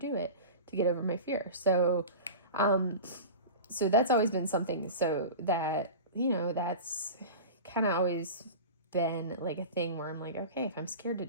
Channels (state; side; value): inverted; both; correlation -0.32